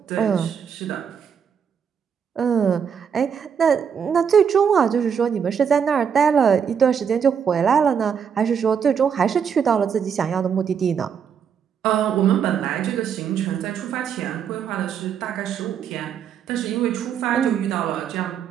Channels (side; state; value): left; quieter; 7.4 dB